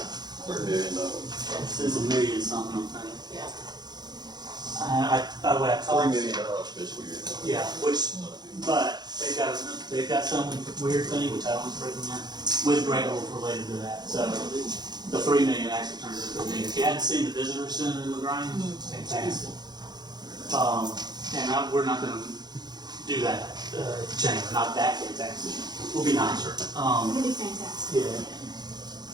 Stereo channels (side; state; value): left; late; 0.20 ms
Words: $3 million. it's $1 million something, I think. Yeah. By the way, I $3 talked. million fiscal year. Yeah, but they've got some weird thing, which I don't recommend, with Great Wolf related to that. So the 3 million actually turns into $1 million. If you hadn't seen the visitor center in LaGrange, it's fantastic. And we're not gonna do that, at the chamber, not that fantastic. We'll be nicer. It'll be fantastic.